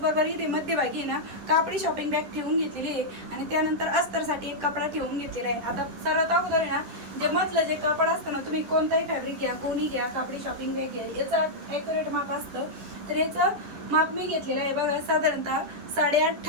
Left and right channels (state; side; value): late; left; 10 ms